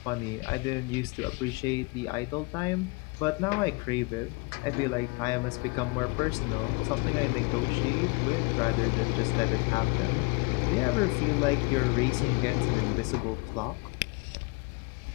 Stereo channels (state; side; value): quieter; right; 28.7 dB